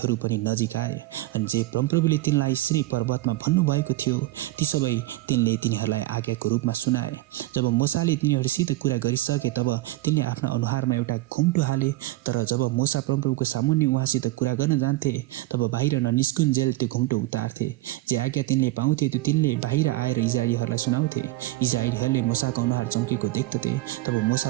पनि नजिक आए अनि जे परमप्रभुले तिनलाई सिनै पर्वतमा भन्नुभएको थियो ती सबै तिनले तिनीहरूलाई आज्ञाको रूपमा सुनाए। जब मूसाले तिनीहरूसित कुरा गरिसके, तब तिनले आफ्ना अनुहारमा एउटा घुम्टो हाले। तर जब मूसा परमप्रभुको सामुन्ने उहाँसित कुरा गर्न जान्थे, तब बाहिर ननिस्कुन्जेल त्यो घुम्टो उतार्थे। जे आज्ञा तिनले पाउँथे त्यो तिनले बाहिर आएर इजरायलीहरूलाई सुनाउँथे। इजरायलीहरूले मूसाको अनुहार चम्केको देख्दथे। तब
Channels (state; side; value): quieter; left; 18.5 dB